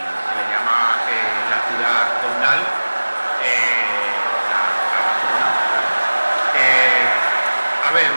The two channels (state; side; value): inverted; both; correlation -1.00